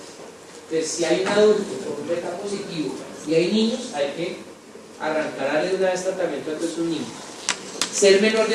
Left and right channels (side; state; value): both; identical; correlation 1.00